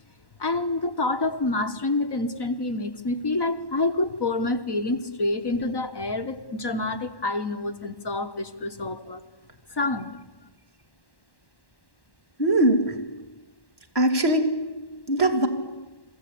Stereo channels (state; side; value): late; right; 1.1 ms